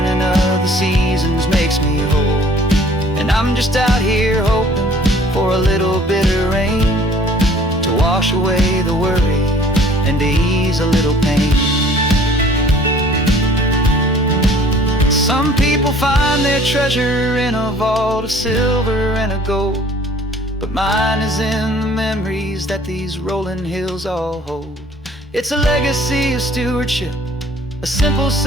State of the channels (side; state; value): both; normal; correlation 0.54